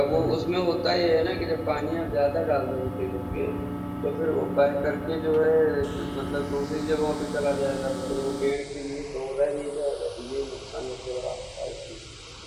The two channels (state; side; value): identical; both; correlation 1.00